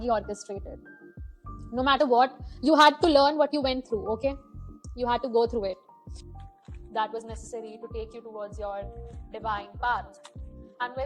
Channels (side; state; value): both; identical; correlation 1.00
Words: orchestrated. No matter what, you had to learn what you went through, okay? You had to go through it. That was necessary to take you towards your divine path. And